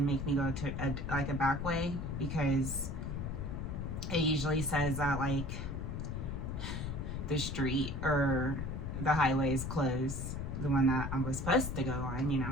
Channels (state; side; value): noise; left; rumble, 4 dB below the sound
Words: make me go to a back way, because it usually says that like the street or the highway is closed, the one that I was supposed to go on. You